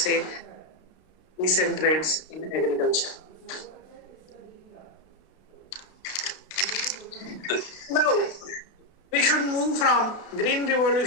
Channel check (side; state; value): right; late; 32 ms